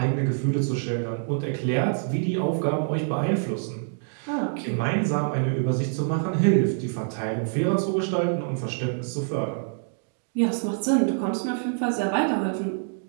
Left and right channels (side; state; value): left; silent; digital silence